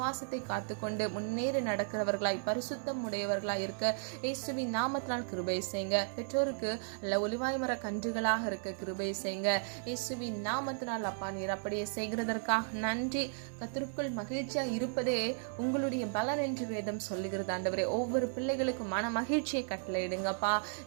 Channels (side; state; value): left; silent; 55 dB below the other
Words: காத்துக்கொண்டு முன்னேறி நடக்கிறவர்களாய் பரிசுத்தம் உடையவர்களாய் இருக்க இயேசுவின் நாமத்தினால் கிருபை செய்யுங்க. பெற்றோருக்கு அல்ல ஒலிவாய் மர கன்றுகளாக இருக்க கிருபை செய்யுங்க. இயேசுவின் நாமத்தினால் அப்பா நீர் அப்படியே செய்கிறதற்காக நன்றி. கர்த்தருக்குள் மகிழ்ச்சியா இருப்பதே உங்களுடைய பலன் என்று வேதம் சொல்லுகிறது ஆண்டவரே. ஒவ்வொரு பிள்ளைகளுக்கும் மன மகிழ்ச்சியை கட்டளையிடுங்கப்பா.